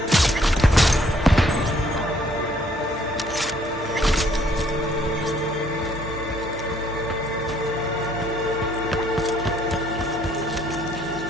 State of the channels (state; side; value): normal; both; correlation 0.64